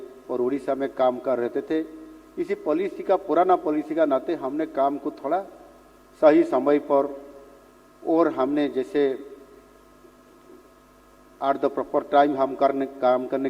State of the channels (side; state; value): both; identical; correlation 1.00